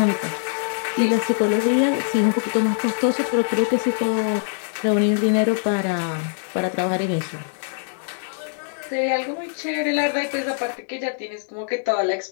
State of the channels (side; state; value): right; silent; digital silence